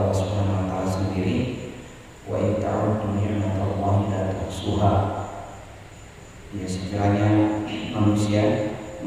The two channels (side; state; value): both; identical; correlation 1.00